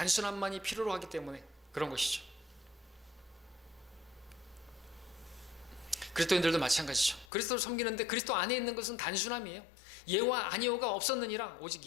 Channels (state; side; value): drops out; right; at 7.2 s